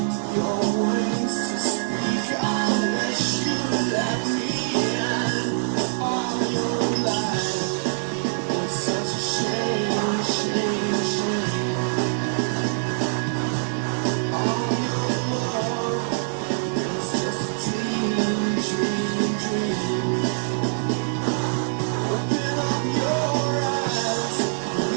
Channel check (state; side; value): silent; left; digital silence